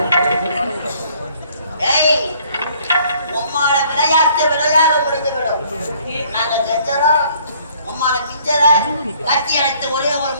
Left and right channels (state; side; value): inverted; both; correlation -0.60